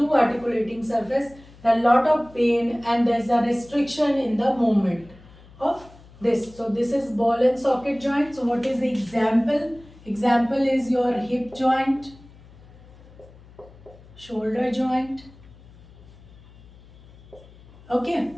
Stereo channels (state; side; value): noise; left; hum, 23 dB below the sound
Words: articulating surface, a lot of pain, and there is a restriction in the movement of this. So this is ball and socket joint. So what is the example? Example is your hip joint, shoulder joint. Okay,